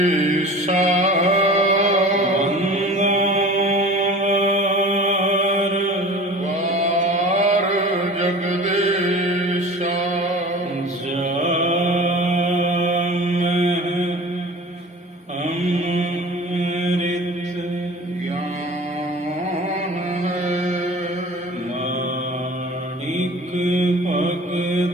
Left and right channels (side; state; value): both; normal; correlation 0.39